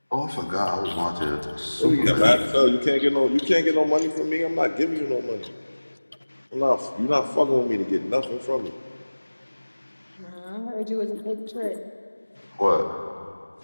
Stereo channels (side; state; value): both; inverted; correlation -1.00